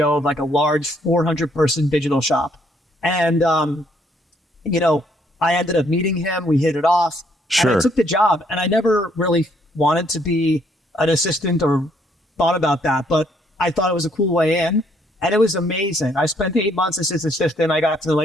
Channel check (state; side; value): normal; both; correlation 0.68